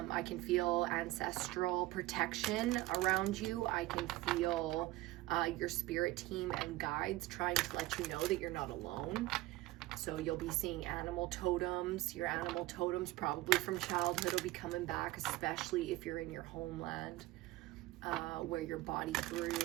can feel ancestral protection around you. I can feel your spirit team and guides trying to let you know that you're not alone. So you'll be seeing animal totems. Your animal totems probably from childhood will be coming back, especially if you're in your homeland, where your body grew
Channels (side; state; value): left; quieter; 18.1 dB